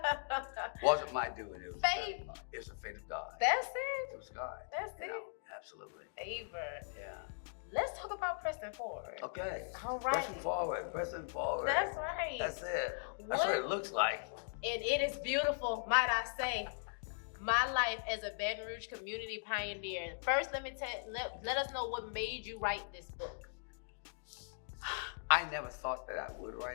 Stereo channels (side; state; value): right; silent; digital silence